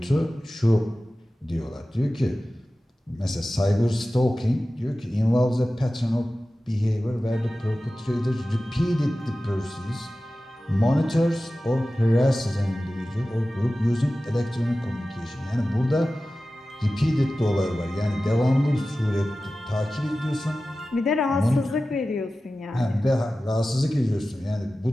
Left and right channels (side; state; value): both; normal; correlation 0.95